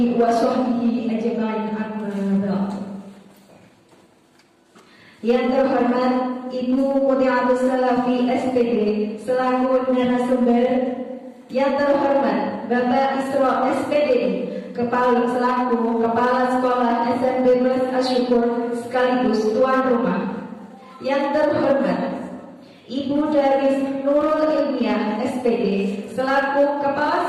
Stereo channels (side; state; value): both; identical; correlation 1.00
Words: wa sahbihi ajma'in amma ba'd. Yang terhormat Ibu Mutiatus Salafi SPD selaku narasumber, yang terhormat Bapak Isro SPD selaku Kepala Sekolah SMP Plus Asyukur sekaligus tuan rumah, yang terhormat Ibu Daris Nurul Ilmiah SPD selaku